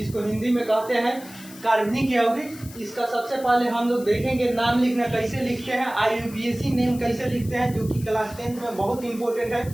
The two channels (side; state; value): left; noise; hiss, 18 dB below the sound